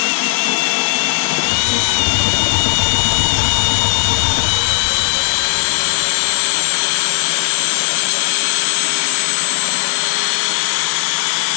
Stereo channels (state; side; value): silent; right; 61 dB below the other